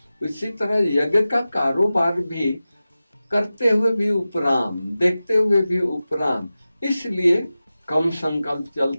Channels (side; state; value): both; inverted; correlation -0.95